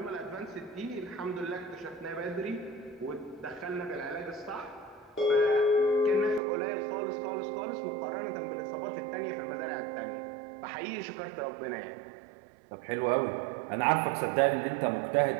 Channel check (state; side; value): drops out; left; at 6.4 s